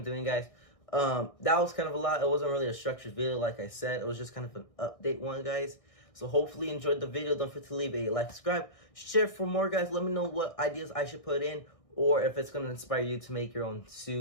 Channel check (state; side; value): late; right; 1.6 ms